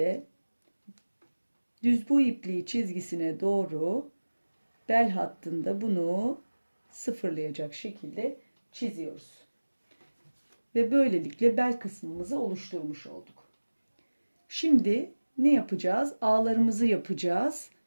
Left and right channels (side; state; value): both; inverted; correlation -1.00